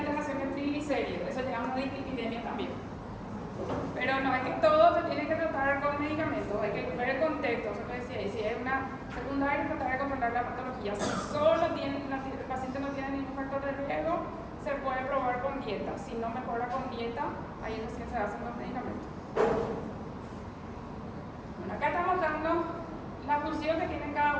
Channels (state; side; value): identical; both; correlation 1.00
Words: de triglicéridos, eso llama una dislipidemia también. Pero no es que todo se tiene que tratar con medicamentos, hay que ver el contexto, eso lo decía, y si es una secundaria, tratar de controlar la patología. Si solo el paciente no tiene ningún factor de riesgo, se puede probar con dieta. Si no mejora con dieta, ahí recién se hacen los medicamentos. Bueno, acá estamos dando la función que tienen